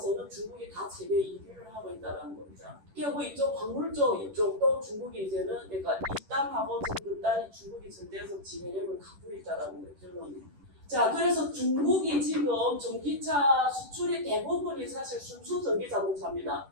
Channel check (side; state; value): left; late; 10 ms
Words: 중국이 다 세계 1위를 하고 있다는 겁니다. 그리고 이쪽 광물 쪽 이쪽도 중국이 이제는 그러니까 입단하고 전급단이 중국이 절대적 지배력을 갖고 있다는 거예요. 결론이. 자, 그래서 중국이 지금 전기차 수출의 대부분이 사실 순수 전기 자동차입니다.